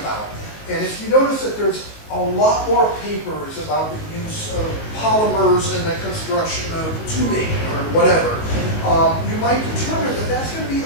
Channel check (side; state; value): right; late; 19 ms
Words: And if you notice that there's a lot more papers about the use of polymers in the construction of tubing or whatever, you might determine that that's going to be